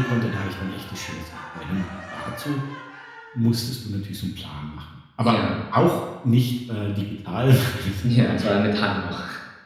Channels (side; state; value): both; identical; correlation 1.00